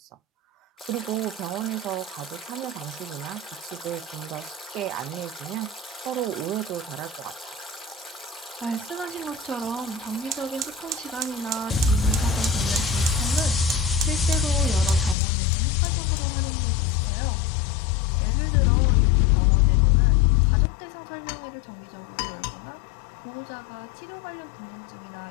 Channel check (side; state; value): right; drops out; at 15.2 s